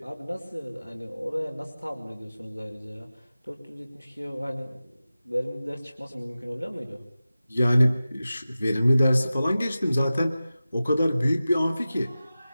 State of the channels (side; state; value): both; inverted; correlation -0.95